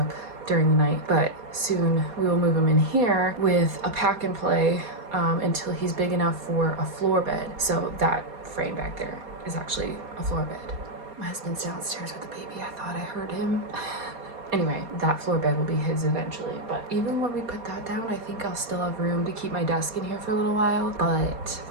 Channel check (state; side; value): late; left; 4.2 ms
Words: during the night. But soon we will move him in here with a pack and play until he's big enough for a floor bed. So that frame back there is actually a floor bed. My husband's downstairs with the baby. I thought I heard him. Anyway, that floor bed will be his eventually, but even when we put that down, I think I'll still have room to keep my desk in here for a little while, but